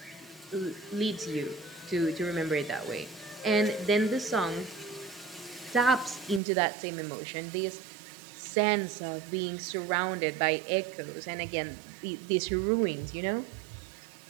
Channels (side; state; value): left; drops out; at 6.4 s